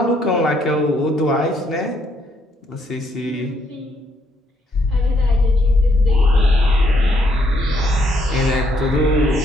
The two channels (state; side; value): normal; both; correlation 0.72